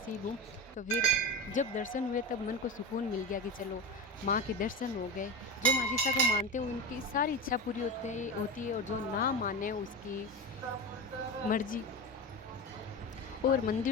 हूँ। तो फिर जब दर्शन हुए तब मन को सुकून मिल गया कि चलो माँ के दर्शन हो गए। जो माजिसा को मानते हैं उनकी सारी इच्छा पूरी होती है और जो ना माने उसकी मर्जी। और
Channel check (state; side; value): normal; both; correlation 0.23